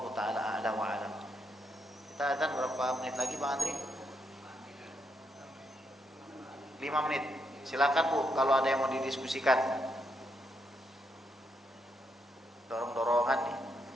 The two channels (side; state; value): both; normal; correlation 0.79